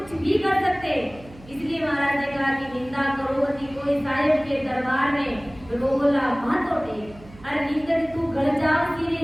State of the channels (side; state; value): right; noise; hum, 21 dB below the sound